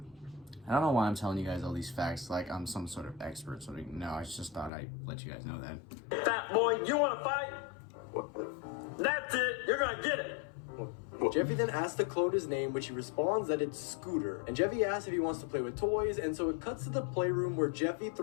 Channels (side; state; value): right; drops out; at 4.7 s